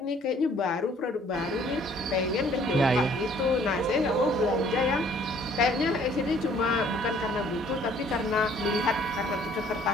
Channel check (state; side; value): normal; both; correlation 0.59